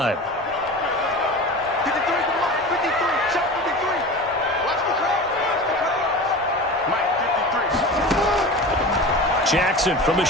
Jackson from the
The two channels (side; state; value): both; normal; correlation 0.32